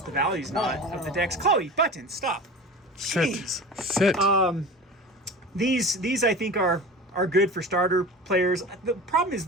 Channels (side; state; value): both; normal; correlation 0.34